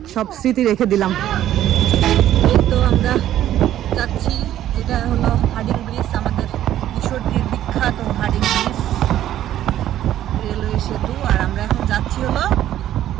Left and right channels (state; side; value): quieter; left; 12.3 dB